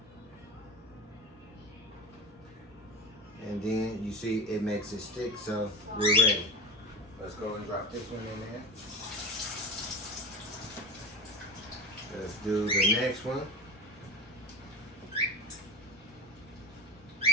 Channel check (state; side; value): normal; both; correlation 0.28